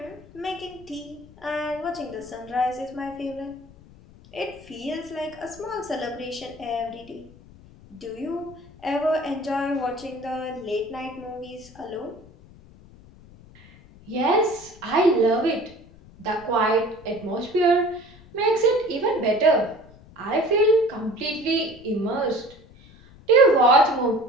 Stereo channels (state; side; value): noise; left; rumble, 23 dB below the sound